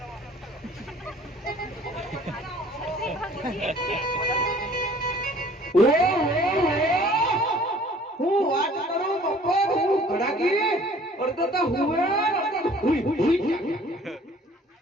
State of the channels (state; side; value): normal; both; correlation 0.52